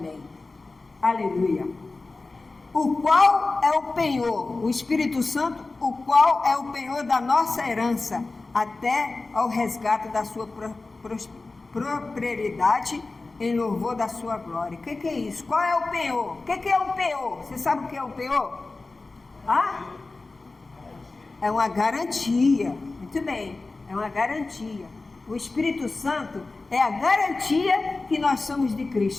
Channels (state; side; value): quieter; right; 3.5 dB